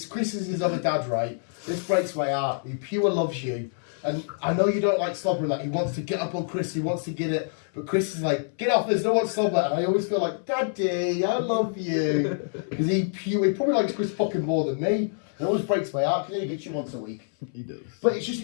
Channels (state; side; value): silent; right; 61 dB below the other